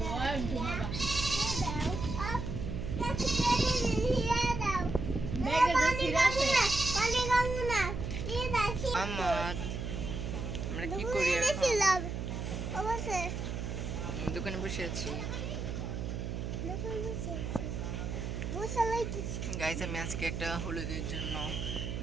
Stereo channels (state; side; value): noise; right; hum, 4 dB below the sound